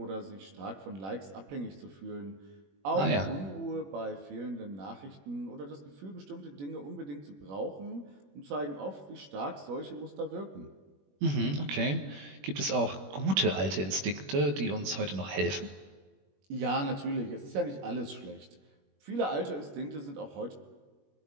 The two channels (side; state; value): left; late; 21 ms